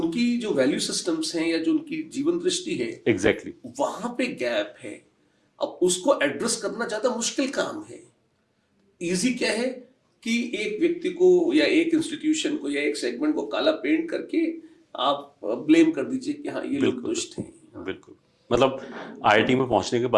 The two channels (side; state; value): both; identical; correlation 1.00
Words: जो वैल्यू सिस्टम्स हैं या जो उनकी जीवन दृष्टि है, एग्जैक्टली वहां पे गैप है। अब उसको एड्रेस करना ज्यादा मुश्किल काम है। इजी क्या है कि एक व्यक्ति को या एक इंस्टीट्यूशन को या एक सेगमेंट को काला पेंट करके आप ब्लेम कर दीजिए कि हाँ ये लोग बिल्कुल दुष्ट हैं। बिल्कुल। मतलब आईआईटी में पहुंचने के